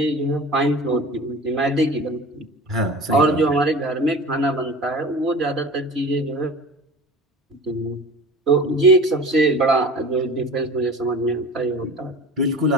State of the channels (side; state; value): both; normal; correlation 0.37